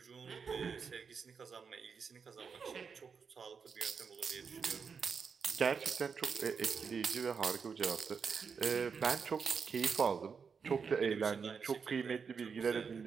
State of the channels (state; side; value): quieter; left; 5.9 dB